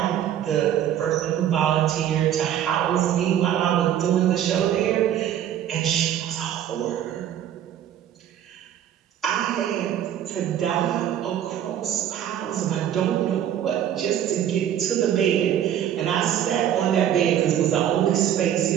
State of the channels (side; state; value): left; quieter; 10.5 dB